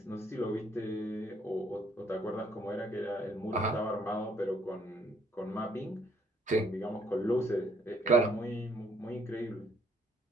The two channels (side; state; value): both; normal; correlation 0.67